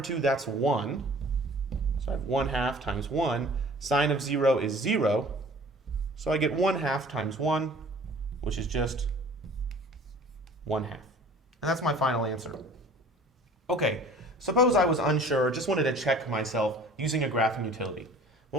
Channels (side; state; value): both; normal; correlation 0.48